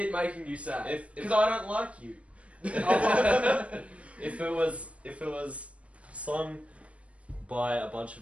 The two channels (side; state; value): left; late; 0.063 ms